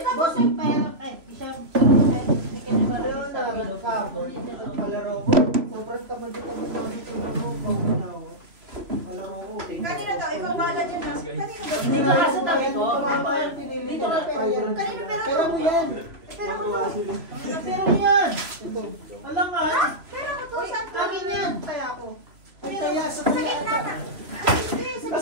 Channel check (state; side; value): late; left; 3.0 ms